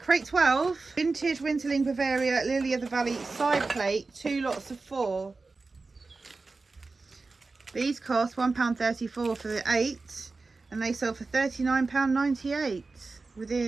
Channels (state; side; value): quieter; left; 3.8 dB